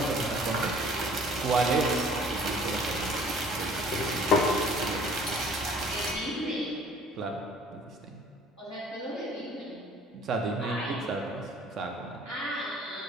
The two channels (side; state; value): both; normal; correlation 0.53